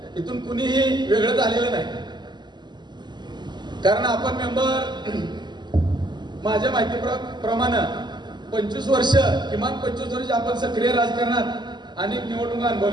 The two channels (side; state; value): left; late; 0.21 ms